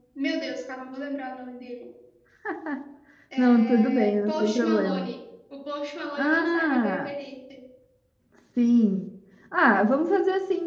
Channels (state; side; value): identical; both; correlation 1.00